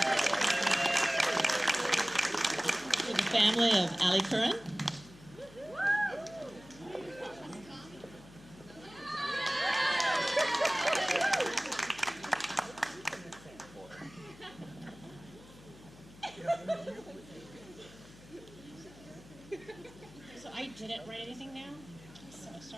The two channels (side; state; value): left; noise; hum, 21 dB below the sound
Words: To the family of Ali Curran. So I didn't write anything down, so